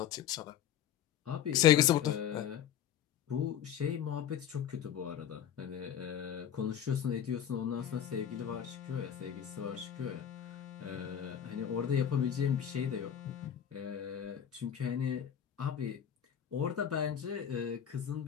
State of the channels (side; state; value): right; quieter; 9.6 dB